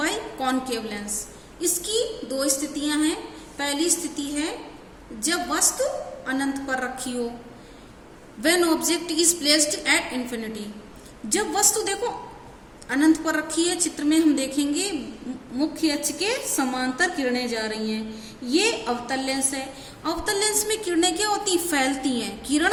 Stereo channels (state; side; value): identical; both; correlation 1.00